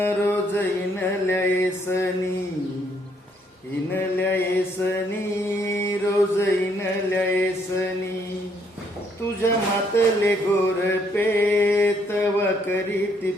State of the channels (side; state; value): both; normal; correlation 0.70